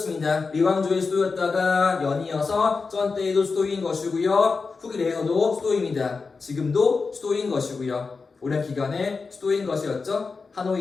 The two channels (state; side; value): quieter; right; 4.5 dB